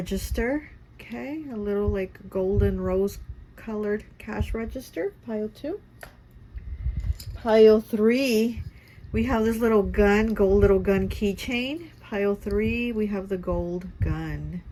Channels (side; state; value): both; identical; correlation 1.00